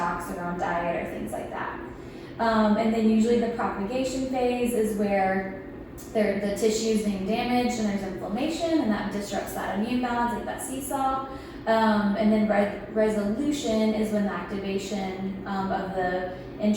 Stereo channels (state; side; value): identical; both; correlation 1.00